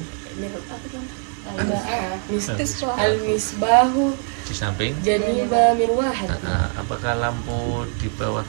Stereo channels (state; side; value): quieter; left; 38.9 dB